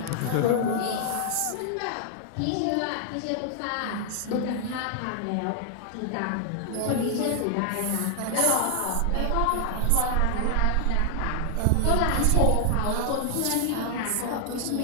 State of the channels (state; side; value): different; both; correlation 0.00